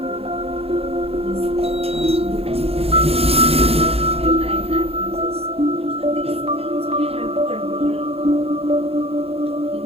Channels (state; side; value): late; left; 0.29 ms